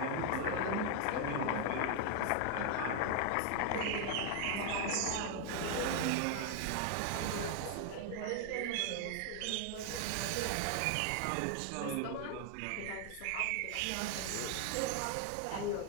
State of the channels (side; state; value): both; different; correlation 0.00